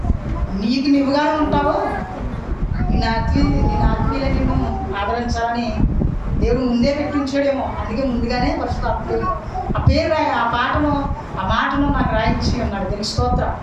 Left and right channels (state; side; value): identical; both; correlation 1.00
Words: నీకు నువ్వుగానే ఉంటావు, నేను ఆత్మీయులు నిన్ను ఆదరించాలని దేవుడు ముందే పెట్టించాడేమో. అందుకే ముందుగానే ఫస్ట్ ఆ పేరు ఆ మాటను నాకు రాయించి ఉన్నాడు. దీనికి స్తోత్రం.